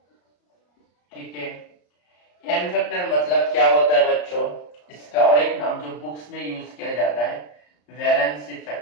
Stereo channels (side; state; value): right; late; 34 ms